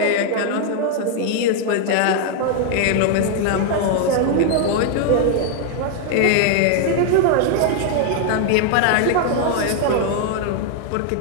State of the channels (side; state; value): both; different; correlation 0.00